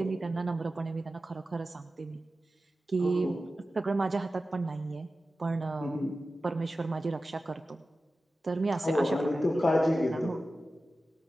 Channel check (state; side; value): normal; both; correlation 0.94